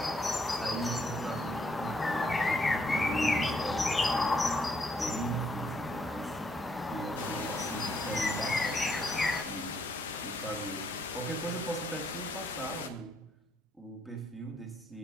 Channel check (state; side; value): normal; both; correlation 0.73